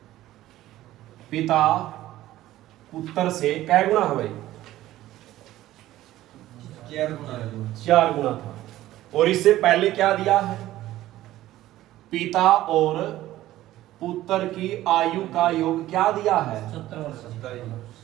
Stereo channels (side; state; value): left; quieter; 14.9 dB